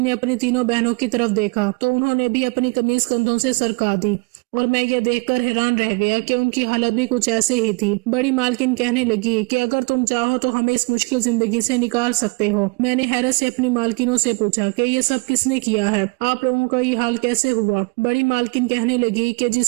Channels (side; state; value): left; quieter; 30.2 dB